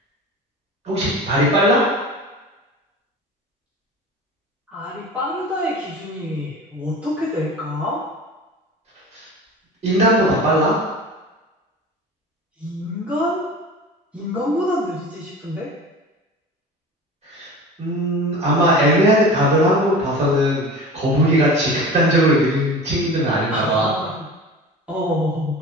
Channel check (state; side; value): normal; both; correlation 0.36